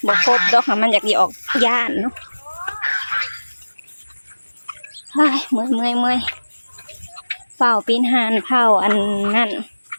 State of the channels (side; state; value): both; inverted; correlation -1.00